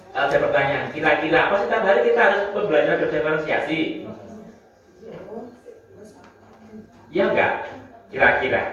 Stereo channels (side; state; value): both; identical; correlation 1.00